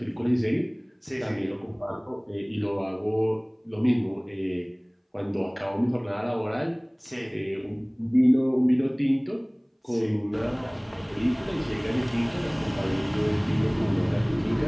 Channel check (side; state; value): both; identical; correlation 1.00